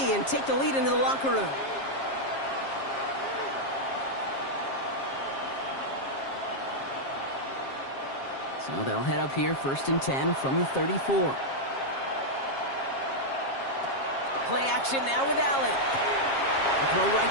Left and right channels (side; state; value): right; late; 7.4 ms